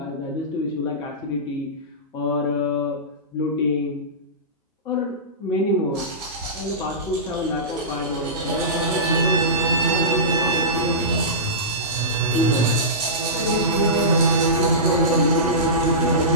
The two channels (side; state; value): both; normal; correlation -0.19